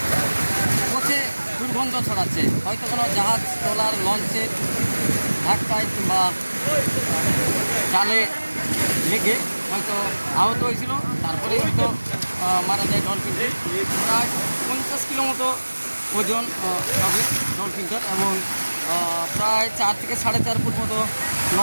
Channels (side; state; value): both; inverted; correlation -1.00